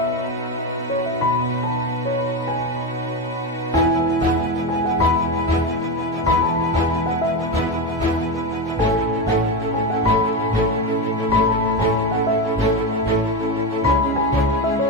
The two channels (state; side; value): normal; both; correlation 0.15